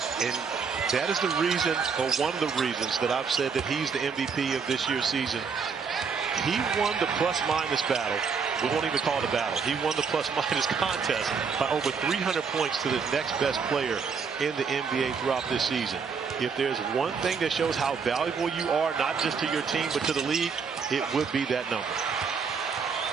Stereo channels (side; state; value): left; quieter; 5.7 dB